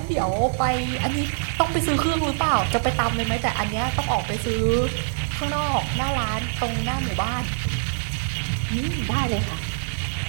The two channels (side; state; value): left; silent; digital silence